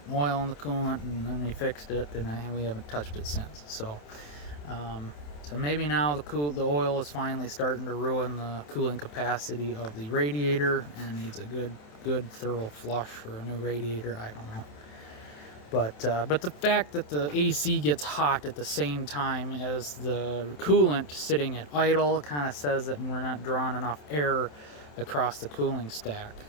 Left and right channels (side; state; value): right; late; 27 ms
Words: oil in the coolant, and then we fixed it, and we haven't touched it since. So so maybe now the oil is finally starting to ruin the cooling capacity of the radiator and needs a good thorough flush for a new radiator. I don't know. But the fact that the AC gets hot at the same time as the coolant sitting at idle kind of says that we're not drawing enough air across the cooling stack.